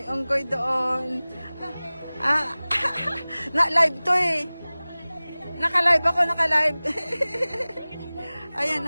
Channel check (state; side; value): inverted; both; correlation -0.99